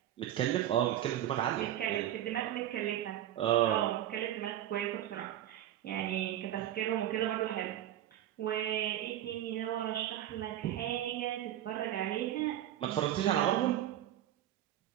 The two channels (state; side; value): quieter; left; 12.1 dB